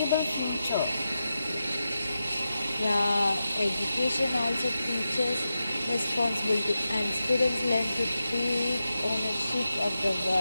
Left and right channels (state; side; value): inverted; both; correlation -0.90